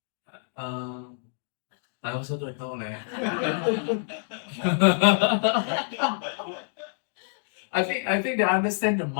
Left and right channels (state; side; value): silent; right; digital silence